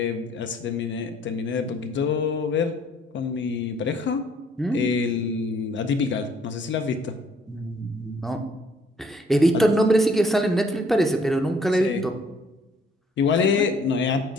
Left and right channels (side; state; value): both; normal; correlation 0.61